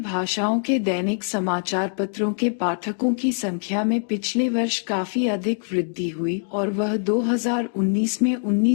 के दैनिक समाचार पत्रों के पाठकों की संख्या में पिछले वर्ष काफी अधिक वृद्धि हुई और वह 2019 में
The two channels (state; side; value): silent; right; 61 dB below the other